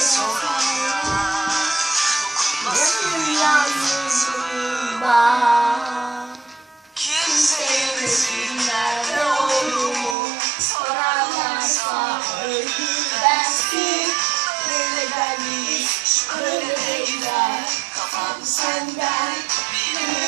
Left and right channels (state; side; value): drops out; left; at 10.2 s